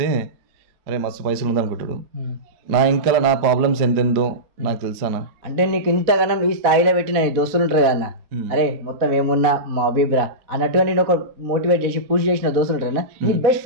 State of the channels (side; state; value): left; late; 4.0 ms